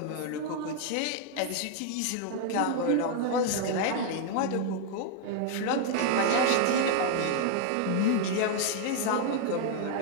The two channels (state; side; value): different; both; correlation 0.00